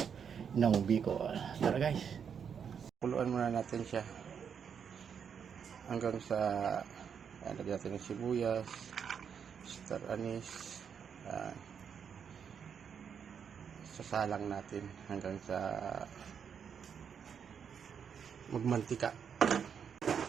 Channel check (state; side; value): quieter; left; 7.3 dB